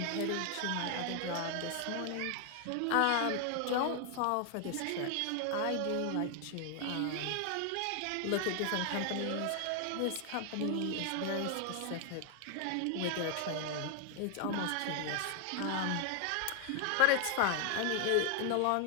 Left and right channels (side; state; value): both; different; correlation 0.00